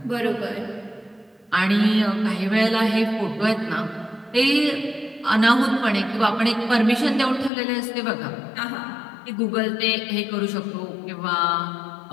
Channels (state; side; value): drops out; right; at 7.5 s